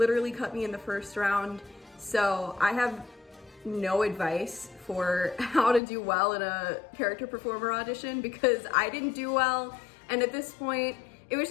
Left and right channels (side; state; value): right; drops out; at 5.8 s